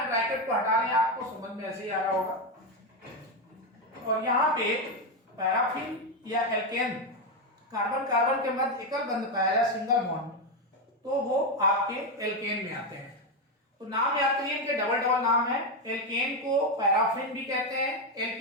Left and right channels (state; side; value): normal; both; correlation 0.08